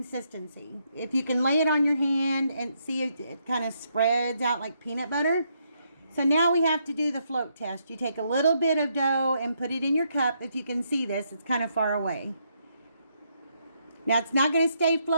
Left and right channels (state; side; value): inverted; both; correlation -0.76